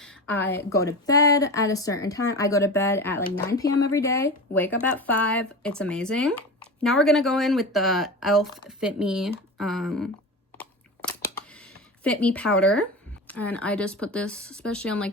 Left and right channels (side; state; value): both; normal; correlation 0.27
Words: I go to bed at a certain time. I go to bed at like 9 p.m. every day, wake up at 5. It's amazing. Now we're gonna go in with the e.l.f. Fit Me powder. And I just put this, especially on